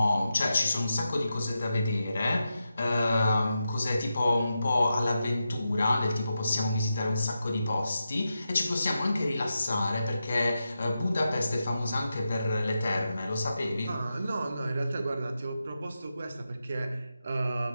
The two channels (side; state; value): both; inverted; correlation -0.89